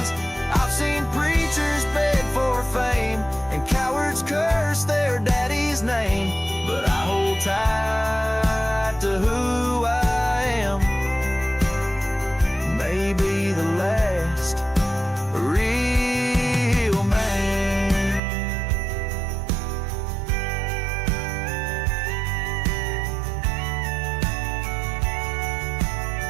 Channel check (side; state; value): left; drops out; at 18.2 s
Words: I've seen preachers beg for fame and cowards curse their daddy's name, but I hold tight to who I am. Maybe the last real man.